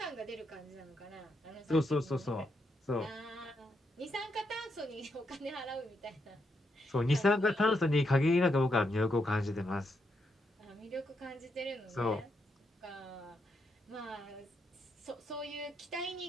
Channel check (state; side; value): normal; both; correlation 0.80